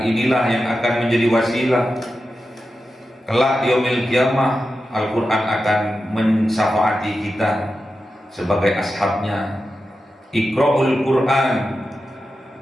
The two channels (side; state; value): both; normal; correlation 0.91